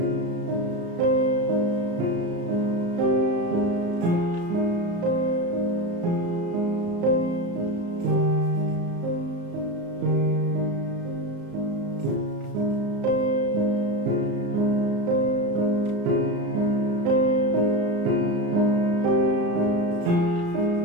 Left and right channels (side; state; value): left; late; 34 ms